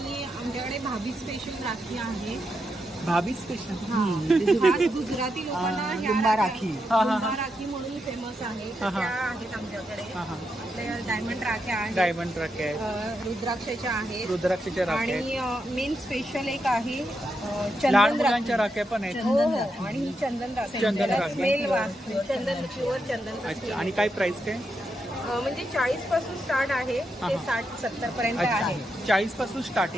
आमच्याकडे भाभी स्पेशल राखी आहे. भाभी स्पेशल? गुजराती लोकांना लिंबा राखी. लिंबा राखी म्हणून फेमस आहे. त्या आहेत आमच्याकडे. आपल्या डायमंड राख्या आहेत. डायमंड राख्या आहेत. रुद्राक्षाच्या आहेत. रुद्राक्षाच्या राख्या आहेत. आणि मेन स्पेशल एक आहे लहान चंदन मुलांच्या राख्या पण आहेत. हो हो. आणि ही चंदन राखी. चंदन राखी. स्मेल चंदन, प्युअर चंदन. अच्छा. आणि काय प्राइस काय? म्हणजे 40 पासून स्टार्ट आहे ते 60-70 पर्यंत आहे. 40 पासून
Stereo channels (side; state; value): both; normal; correlation 0.84